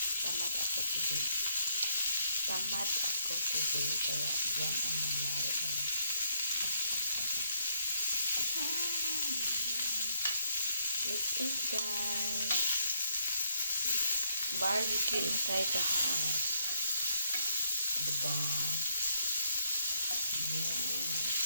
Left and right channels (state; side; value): inverted; both; correlation -0.73